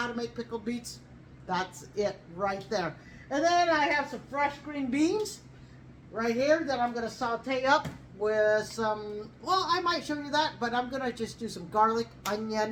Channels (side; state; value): both; identical; correlation 1.00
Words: to make pickled beets, that's it right there. And then I have some fresh green beans right here that I'm going to saute up with some, well, I might show you that, but I'm going to just do some garlic,